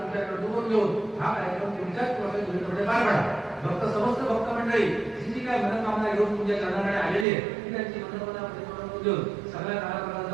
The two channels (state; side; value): drops out; left; at 7.2 s